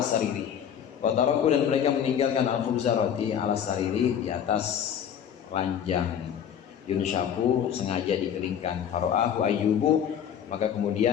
sariri, wa taraku, dan mereka meninggalkan al khubza roti ala sariri, di atas ranjang, yunshaku sengaja dikeringkan. Fara'ahu Ayyubu, maka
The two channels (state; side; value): quieter; right; 8.8 dB